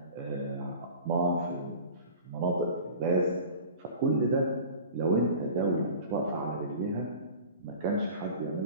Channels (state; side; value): inverted; both; correlation -0.39